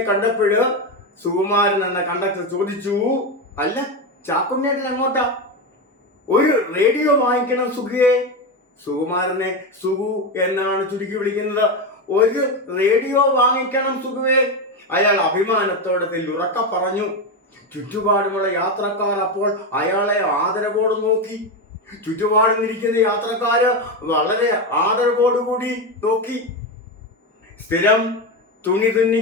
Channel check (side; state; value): both; normal; correlation 0.13